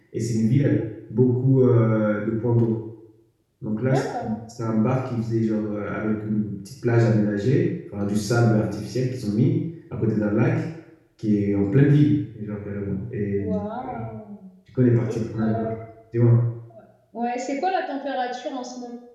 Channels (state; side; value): identical; both; correlation 1.00